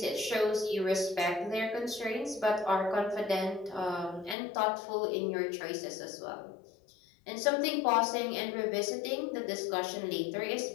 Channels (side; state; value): right; drops out; at 4.4 s